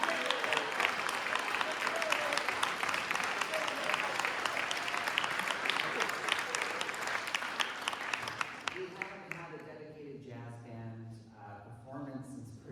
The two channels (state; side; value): identical; both; correlation 1.00